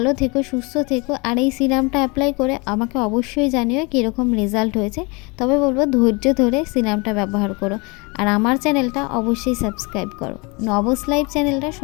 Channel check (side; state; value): right; quieter; 28.2 dB